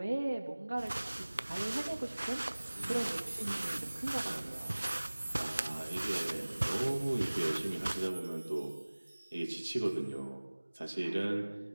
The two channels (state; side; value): inverted; both; correlation -1.00